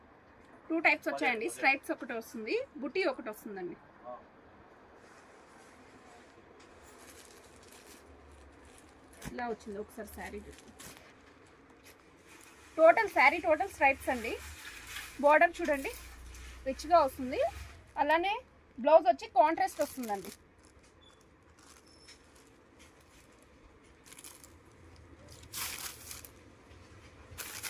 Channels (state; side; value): identical; both; correlation 1.00